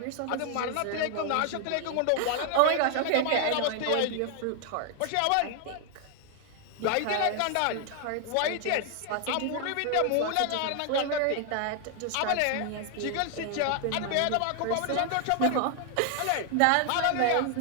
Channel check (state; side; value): different; both; correlation 0.00